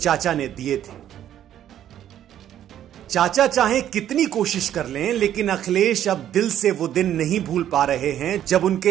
ने दिए थे। चाचा चाहे कितनी कोशिश कर लें, लेकिन अखिलेश अब दिल से वो दिन नहीं भूल पा रहे हैं जब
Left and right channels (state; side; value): quieter; left; 11.0 dB